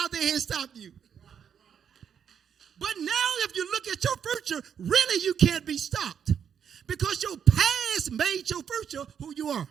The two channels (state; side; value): quieter; left; 8.0 dB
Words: they had stopped you. But now if you look at your future, really you can't be stopped. Because your past made your future who you are.